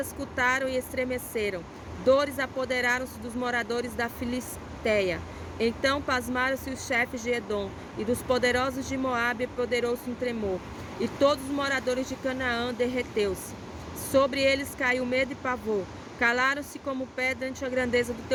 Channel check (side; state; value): both; identical; correlation 1.00